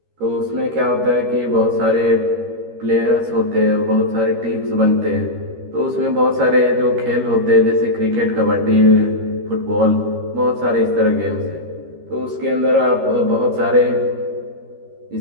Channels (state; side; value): late; left; 13 ms